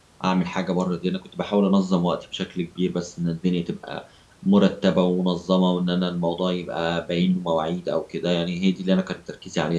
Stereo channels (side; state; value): both; identical; correlation 1.00